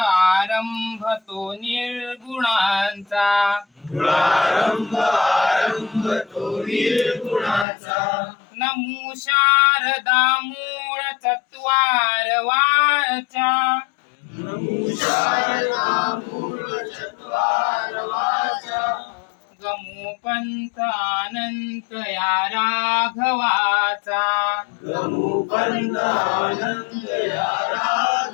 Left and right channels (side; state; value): right; drops out; at 7.7 s